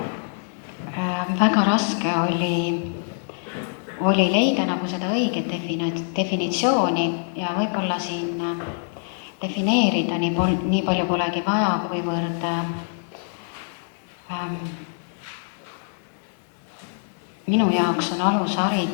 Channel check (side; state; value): right; silent; digital silence